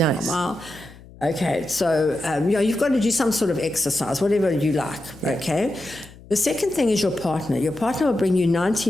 Okay, so you've got to do some sort of exercise, whatever you like. Okay. The second thing is your partner. Your partner will bring you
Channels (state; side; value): noise; left; hum, 21 dB below the sound